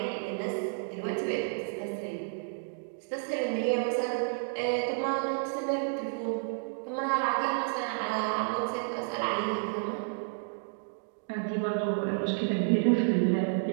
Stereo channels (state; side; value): silent; left; digital silence